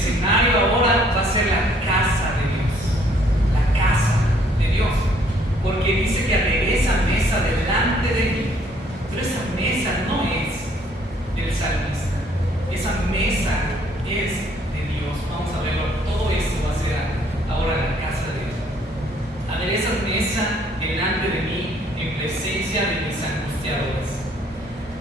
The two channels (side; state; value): both; normal; correlation 0.63